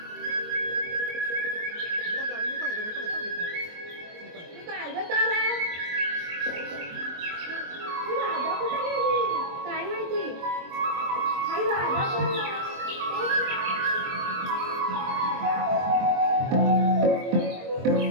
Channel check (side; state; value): left; late; 23 ms